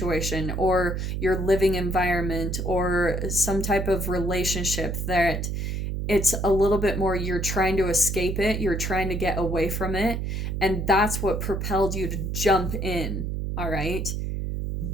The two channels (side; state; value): right; noise; hum, 2 dB below the sound